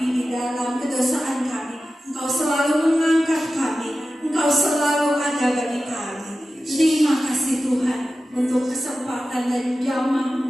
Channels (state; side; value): normal; both; correlation 0.93